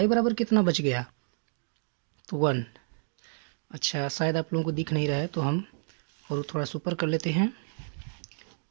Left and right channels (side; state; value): left; silent; digital silence